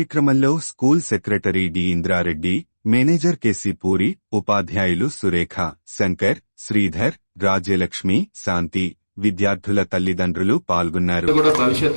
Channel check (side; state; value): both; inverted; correlation -1.00